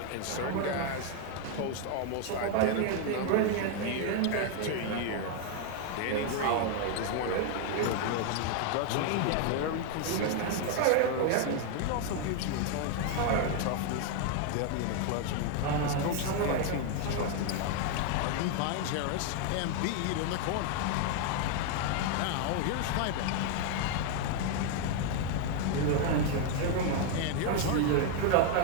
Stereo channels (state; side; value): different; both; correlation 0.00